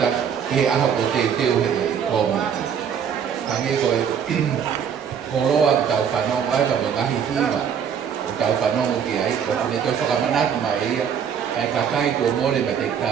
ke he aho ko te teo he kōmiti. Hange koe, koroa ki tau whanongo ai, ka ngahi hiwa, o tau whanongo ki ai, o kune toi whakamanatu mai ia, ai kakai ko mōre ma te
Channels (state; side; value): quieter; left; 7.7 dB